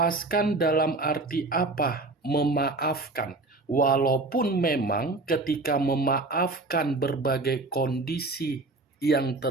dalam arti apa? Memaafkan. Walaupun memang ketika memaafkan berbagai kondisi yang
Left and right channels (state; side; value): quieter; left; 3.2 dB